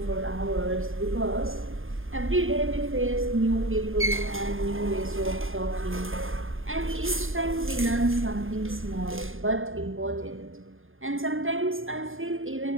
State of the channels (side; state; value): left; late; 0.59 ms